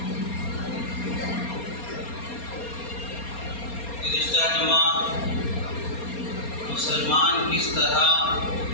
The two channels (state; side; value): late; right; 4.3 ms